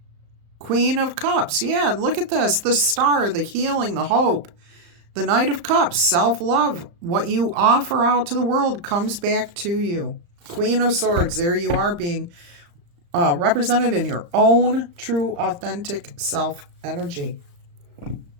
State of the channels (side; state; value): left; late; 35 ms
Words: Queen of Cups. Yeah, look at this. The Star, the healing, the hope. The Knight of Cups, self-love. What you offer out to the world comes back to you. Queen of Swords, there you are being represented in your own true, authentic self-energy.